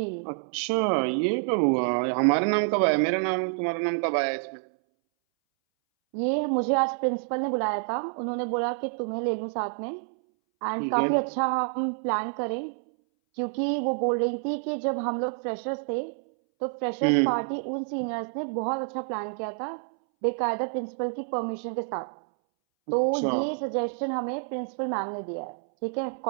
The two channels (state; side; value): silent; left; 60 dB below the other